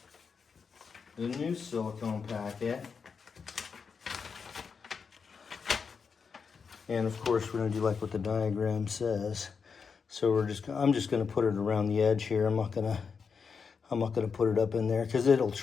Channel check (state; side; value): quieter; right; 5.7 dB